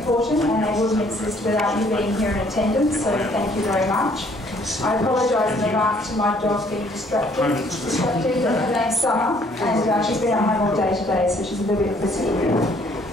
and they wouldn't exist without you being here in attendance, so thank you very much. I apologise in advance to my dog being distracted. Her name's Summer, and she's been at home all day today, so she's a little bit frisky.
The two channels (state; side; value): normal; both; correlation 0.62